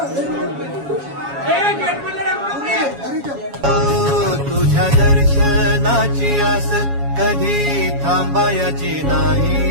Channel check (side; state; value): left; late; 7.2 ms